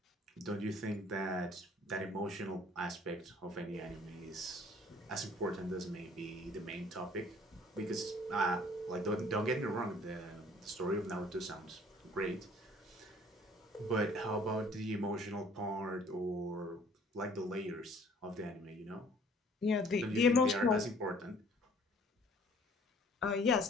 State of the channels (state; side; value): normal; both; correlation 0.55